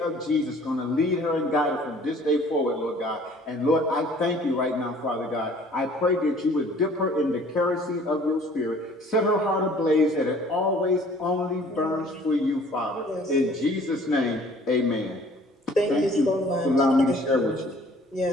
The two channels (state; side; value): normal; both; correlation 0.53